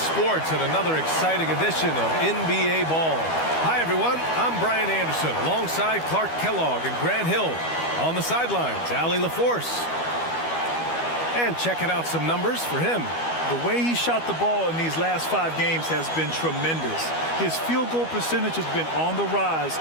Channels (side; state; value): right; late; 12 ms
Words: and another exciting edition of NBA Ball. Hi, everyone. I'm Brian Anderson alongside Clark Kellogg and Grant Hill. On the sidelines, Allie LaForce. And checking out some numbers for him. The way he shot the ball in these last 5 games has been tremendous. His field goal percentage has been on the rise,